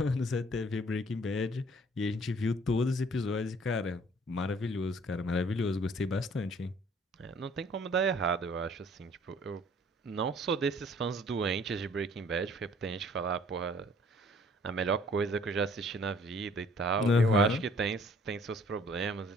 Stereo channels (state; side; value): normal; both; correlation 0.57